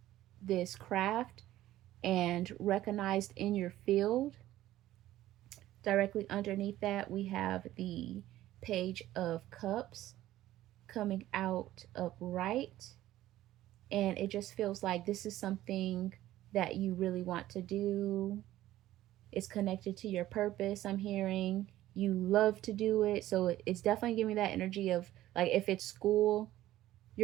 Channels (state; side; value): quieter; left; 14.5 dB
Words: craft and recognized in your field. Directly underneath that, we have the Page of Cups coming out upright. And it just feels like this is something that you really want to do. It's connected to your purpose, I'm hearing. You love to do it. So it's definitely giving me that energy of like, if it's school,